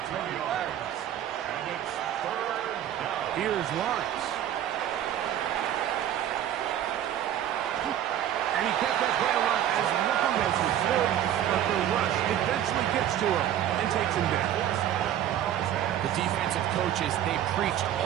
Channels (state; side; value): quieter; left; 11.1 dB